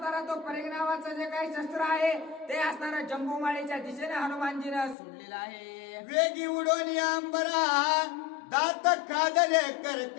तो परीघ नावाचं जे काही शस्त्र आहे ते असणारा जम्बू माळीच्या दिशेने हनुमानजीनं सोडलेलं आहे. वेगी उडोनी अंबरा दात खादले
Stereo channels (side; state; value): right; drops out; at 5.0 s